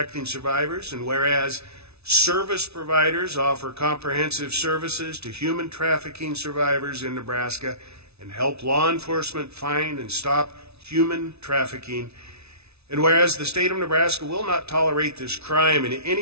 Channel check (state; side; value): late; left; 0.80 ms